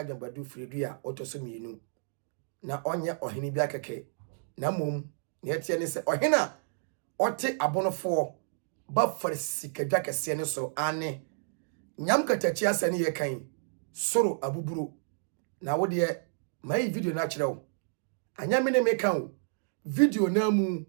firidua otoso mienu na onye ohene bi akeke na mom ne etie ne se ohena ote abonofo ba farsikadwa kese ne so ane nyam katachi asane ye kan soro abuburo na wo de mai video na kirewo anya me ne me kan video na mu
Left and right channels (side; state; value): left; silent; digital silence